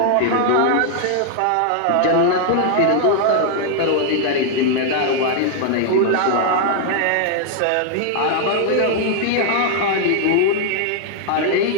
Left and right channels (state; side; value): different; both; correlation 0.00